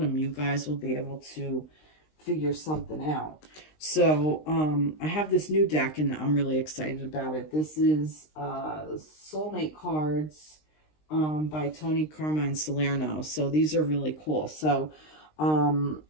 you guys will be able to figure something out. So I have this new deck, and I'm really excited about it. This is Soulmate Cards by Tony Carmine Salerno. So these are really cool. So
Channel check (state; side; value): late; right; 20 ms